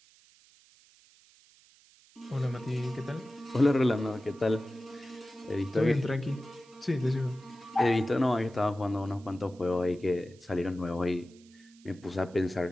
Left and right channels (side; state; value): right; noise; hiss, 28 dB below the sound